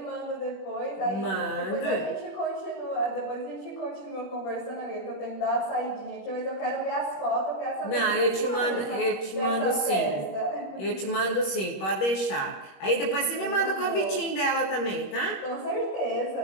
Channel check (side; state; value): right; late; 21 ms